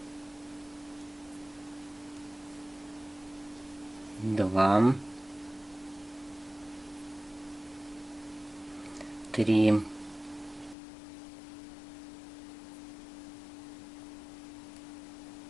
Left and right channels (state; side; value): drops out; right; at 10.8 s